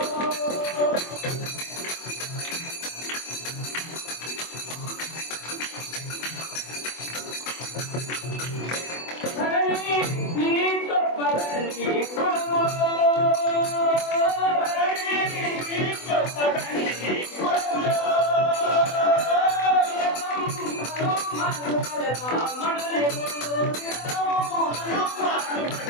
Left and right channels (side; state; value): right; late; 24 ms